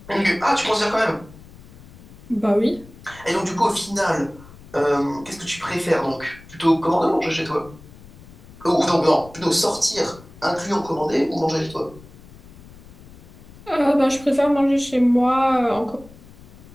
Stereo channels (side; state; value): left; noise; rumble, 20 dB below the sound